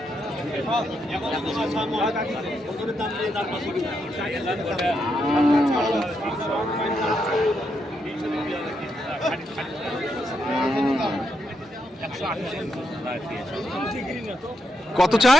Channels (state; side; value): normal; both; correlation 0.81